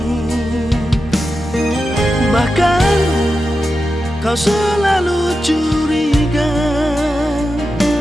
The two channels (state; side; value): normal; both; correlation 0.90